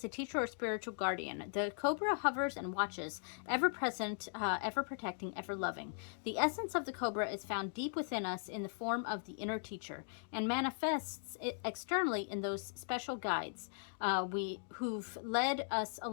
a teacher or spiritual guardian. The Cobra hovers and watches, ever present, ever protecting, ever loving. The essence of the Cobra is found deep within us in the form of the inner teacher and manifests externally in those special guides who've led us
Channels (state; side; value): silent; right; digital silence